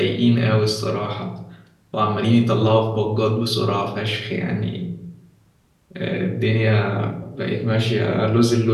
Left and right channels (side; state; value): both; identical; correlation 1.00